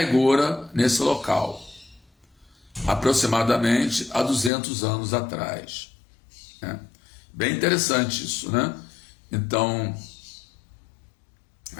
Gora nesse local, aproximadamente há 200 anos atrás. Bem interessante isso, né? Então,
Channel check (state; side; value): drops out; right; at 4.5 s